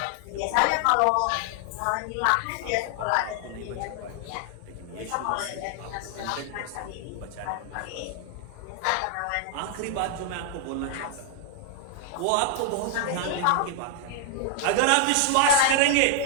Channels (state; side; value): different; both; correlation 0.00